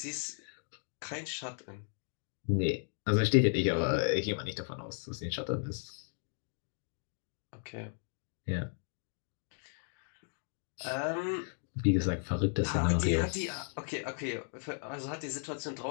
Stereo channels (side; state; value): right; silent; 54 dB below the other